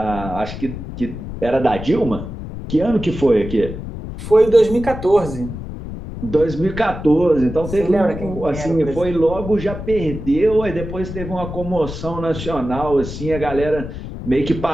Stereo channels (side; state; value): left; noise; rumble, 9 dB below the sound